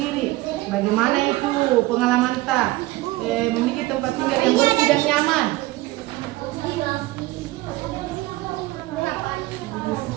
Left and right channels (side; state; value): left; quieter; 18.9 dB